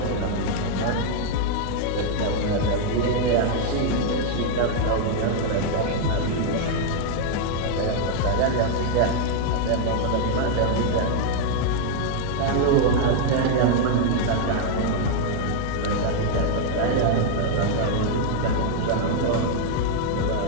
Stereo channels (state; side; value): different; both; correlation 0.00